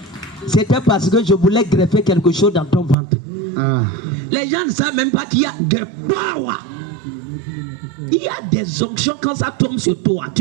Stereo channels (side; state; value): left; drops out; at 3.0 s